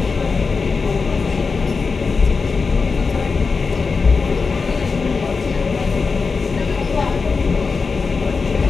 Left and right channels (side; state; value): right; quieter; 4.7 dB